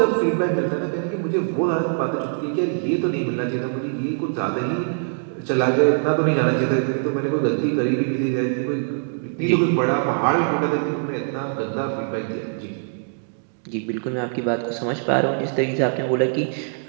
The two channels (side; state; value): left; silent; digital silence